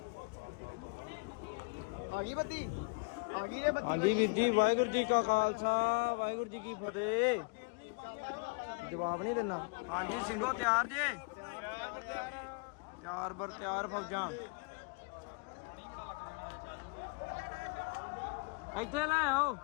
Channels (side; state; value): right; quieter; 31.4 dB